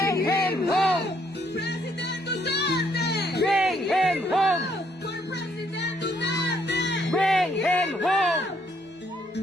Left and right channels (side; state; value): both; normal; correlation 0.70